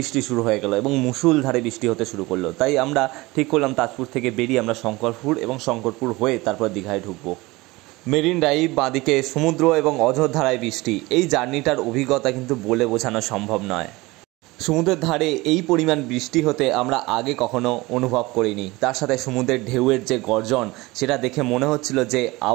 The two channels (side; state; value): left; quieter; 21.7 dB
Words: শুরু হয়ে গেল এবং মুষলধারে বৃষ্টি হতে শুরু করলো। তাই আমরা ঠিক করলাম তাজপুর থেকে বেরিয়ে আমরা শঙ্করপুর এবং শঙ্করপুর হয়ে তারপর দীঘায় ঢুকবো। মেরিন ড্রাইভ, বাঁদিকে সমুদ্র এবং অঝোরধারায় বৃষ্টি, এই জার্নিটার অভিজ্ঞতা কিন্তু বলে বোঝানো সম্ভব নয়। সমুদ্রের ধারে এই পরিমাণ বৃষ্টি হতে আমরা আগে কখনো অনুভব করিনি, তার সাথে সমুদ্রের ঢেউয়ের যে গর্জন সেটা দেখে মনে হচ্ছিল যে